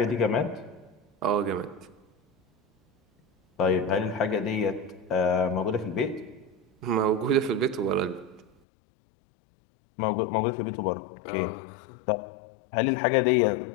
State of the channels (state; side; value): drops out; right; at 8.5 s